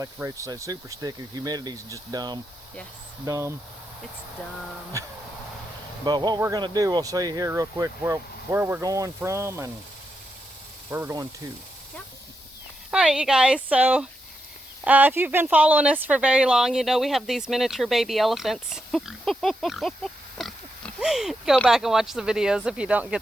Rachel said, super sticky. The humidity's just dumb. Yes. Dumb. It's dumb. But what we're going to do, we'll show you here real quick where we're going from and where we're going to. Yep. All right, you guys. So if you've been following us for very long, you know we have these miniature baby elephants. Go back and watch the videos if you don't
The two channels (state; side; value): normal; both; correlation 0.84